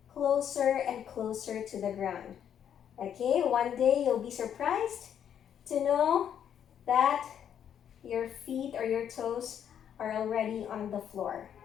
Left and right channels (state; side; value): quieter; right; 9.1 dB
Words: closer and closer to the ground, okay? One day you'll be surprised to know that your feet or your toes are already on the floor.